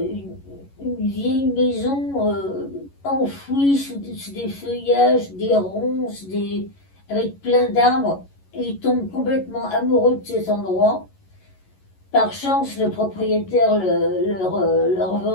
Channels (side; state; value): right; late; 11 ms